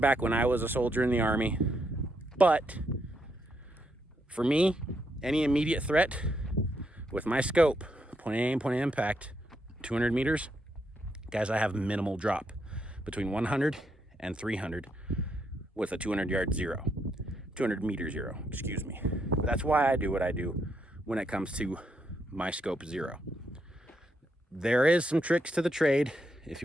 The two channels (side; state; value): both; normal; correlation 0.78